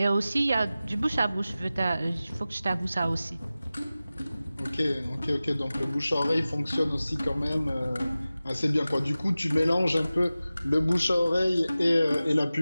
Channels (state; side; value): inverted; both; correlation -0.96